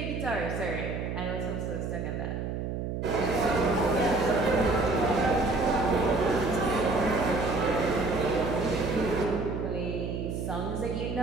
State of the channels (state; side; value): noise; right; hum, 3 dB below the sound